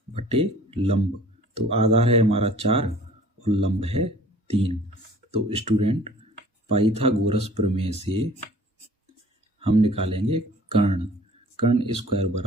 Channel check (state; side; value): normal; both; correlation 0.50